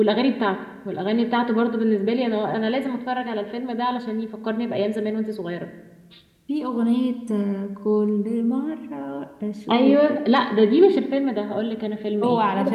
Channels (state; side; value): identical; both; correlation 1.00